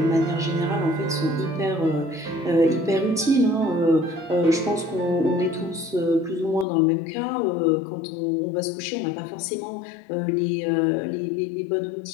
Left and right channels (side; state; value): right; drops out; at 6.7 s